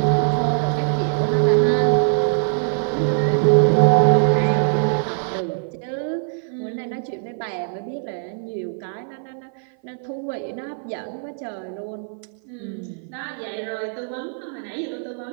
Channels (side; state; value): left; silent; 56 dB below the other